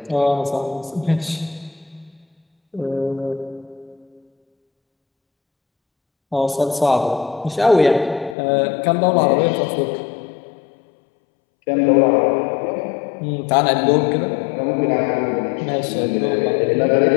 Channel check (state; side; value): drops out; right; at 8.3 s